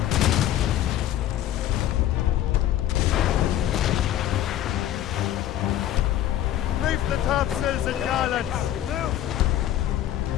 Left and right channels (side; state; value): right; quieter; 12.2 dB